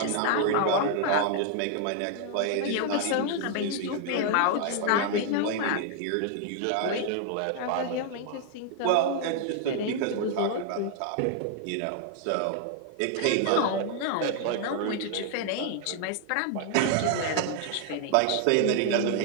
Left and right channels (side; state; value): both; different; correlation 0.00